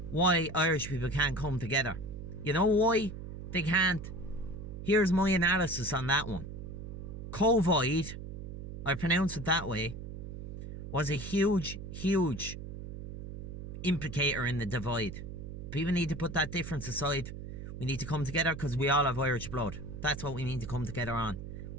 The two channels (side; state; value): right; noise; hum, 9 dB below the sound